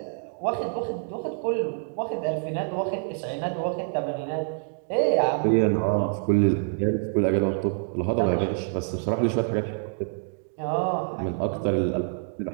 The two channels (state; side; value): silent; left; 61 dB below the other